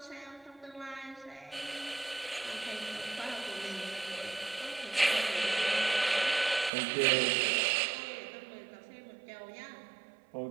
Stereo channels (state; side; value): drops out; left; at 6.7 s